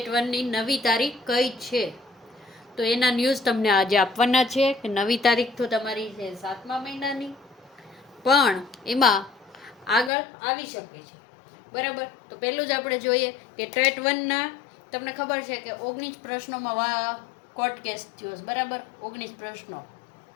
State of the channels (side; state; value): right; drops out; at 10.1 s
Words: 1ની નવી તારીખ કઈ છે, તો એના ન્યૂઝ તમને આજે આપવાના છે કે નવી તારીખ તો તમારી છે 7મા મહિનાની, પણ એમાં આગળ આવી શકે છે. બરાબર. તો પહેલું જ આપણે જોઈએ કે ટેટ 1ના તમને ખબર છે કે 19 પ્રશ્નોમાં કોર્ટ કેસ થયો છે. બરાબર, 19 પ્રશ્નો.